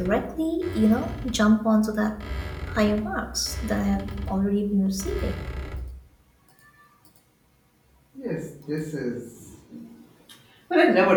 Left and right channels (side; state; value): both; identical; correlation 1.00